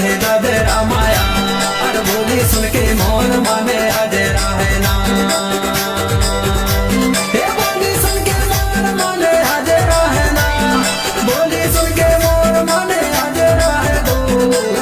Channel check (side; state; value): both; identical; correlation 1.00